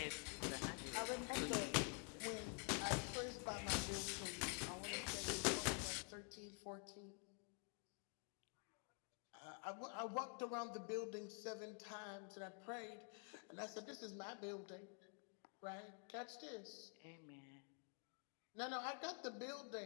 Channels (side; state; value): right; quieter; 37.6 dB